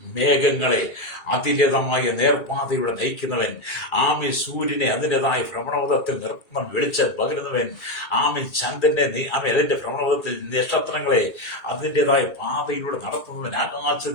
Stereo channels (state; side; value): late; right; 2.4 ms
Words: മേഘങ്ങളെ അതിൻ്റെതായ നേർപ്പാതയിലൂടെ നയിക്കുന്നവൻ, സൂര്യനെ അതിൻ്റെതായ ഭ്രമണപഥത്തിൽ നിർത്തുന്ന വെളിച്ചം പകരുന്നവൻ, ചന്ദ്രനെ അതിന്റെ ഭ്രമണപഥത്തിൽ നക്ഷത്രങ്ങളെ അതിൻ്റെതായ പാതയിലൂടെ നടത്തുന്നവൻ,